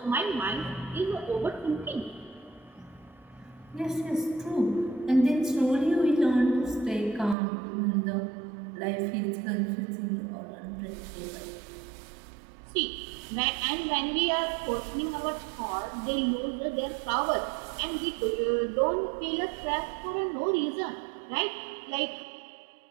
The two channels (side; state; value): left; drops out; at 7.4 s